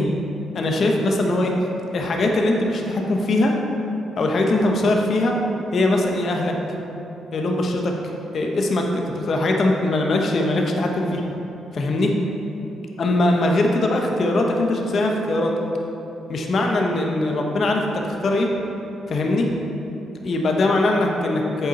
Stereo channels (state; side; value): normal; both; correlation 0.81